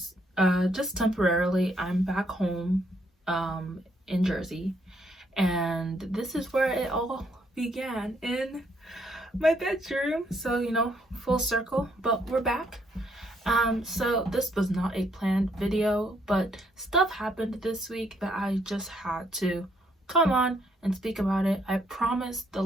just temporarily. I'm back home in Jersey, and this is where it all began, in my bedroom. So full circle, but we're back. So this was not a planned video, but stuff happened this week that I just had to come on and speak about it. I promise the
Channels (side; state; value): both; normal; correlation 0.71